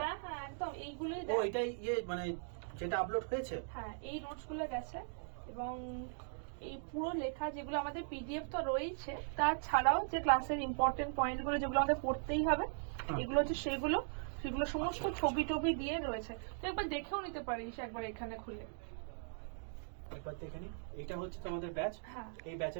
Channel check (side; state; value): left; silent; digital silence